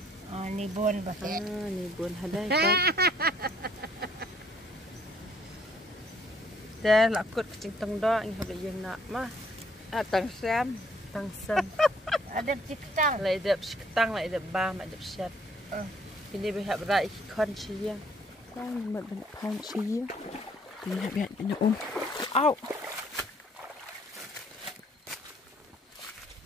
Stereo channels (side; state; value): both; normal; correlation 0.63